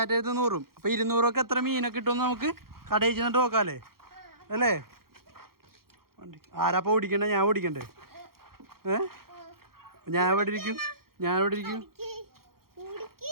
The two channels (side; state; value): left; late; 0.94 ms